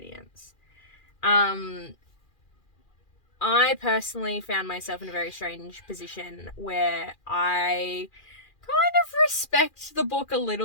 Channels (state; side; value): late; right; 2.4 ms